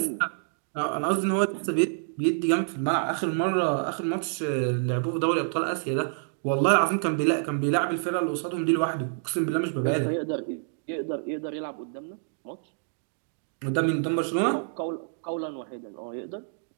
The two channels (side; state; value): left; silent; digital silence